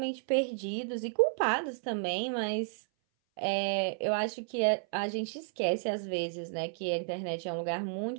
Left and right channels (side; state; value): left; silent; 56 dB below the other